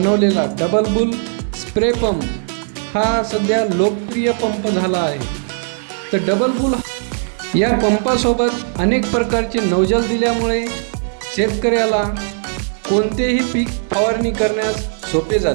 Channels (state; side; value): silent; left; digital silence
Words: डबल बुल स्प्रे पंप हा सध्या लोकप्रिय पंप झाला आहे. तर डबल बुल या पंपासोबत अनेक प्रकारचे नौजल दिल्यामुळे शेतकऱ्याला कोणतेही पीक फवारणी करण्यास सोपे